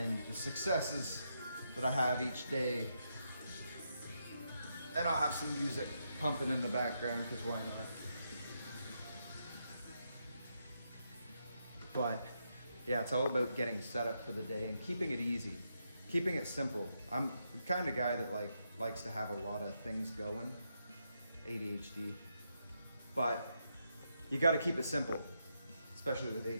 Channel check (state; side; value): inverted; both; correlation -0.82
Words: the successes that I have each day. And I'll have some music pumping in the background, because why not? But yeah, it's all about getting set up for the day and keeping it easy, keeping it simple. I'm the kind of guy that likes to have a lot of things going, ADHD, but you got to keep it simple, especially with